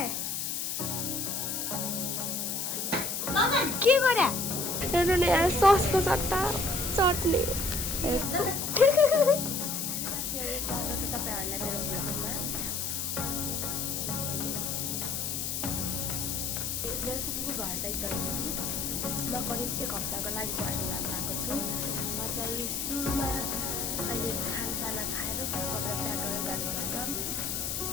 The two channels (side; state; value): left; noise; hiss, 2 dB below the sound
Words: के गरे हेर्नु नि यहाँ ससको सट्टा चट्नी। स्वागत छ तपाईहरुलाई मेरो भ्लगमा। मेरो फुपूको घर साइड गएको थिएँ। म करिब 1 हप्ताको लागि पर्सन जान गएको छु। म चाहिँ सुरुमा अहिले खानसाना खाएर कपडा प्याक गरेर जानुपर्छ।